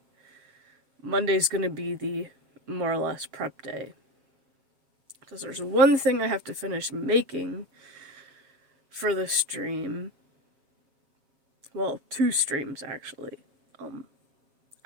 Monday's gonna be the more or less prep day. Because there's one thing I have to finish making for the stream. Well, 2 streams actually.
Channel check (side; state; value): left; late; 7.4 ms